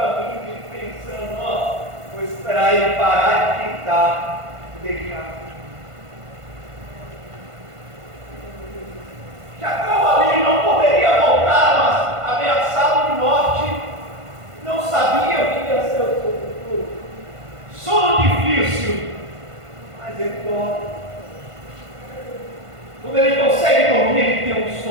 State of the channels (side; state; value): left; late; 1.5 ms